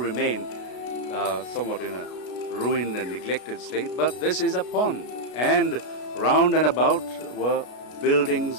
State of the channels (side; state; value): right; late; 33 ms